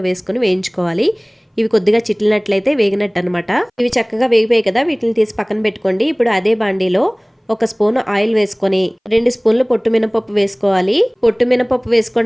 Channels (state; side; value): identical; both; correlation 1.00